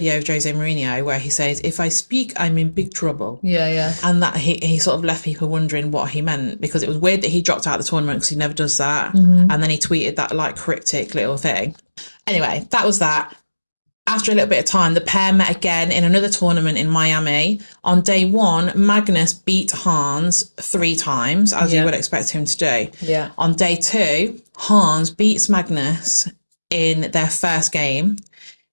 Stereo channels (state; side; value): inverted; both; correlation -1.00